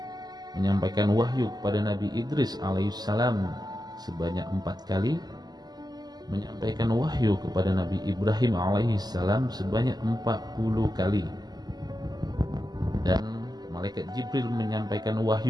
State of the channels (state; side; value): late; left; 0.20 ms